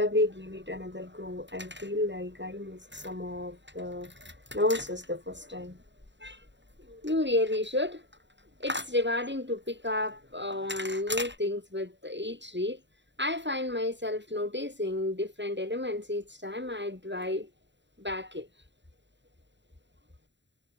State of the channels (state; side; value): late; left; 0.52 ms